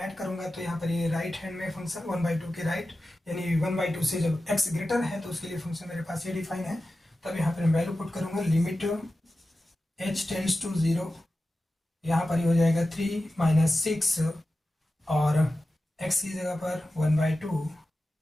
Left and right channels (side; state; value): both; normal; correlation 0.93